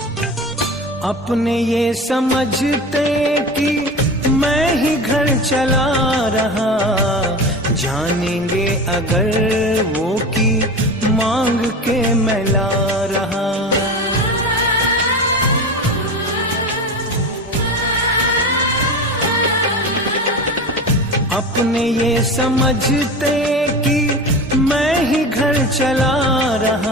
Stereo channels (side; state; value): both; normal; correlation 0.29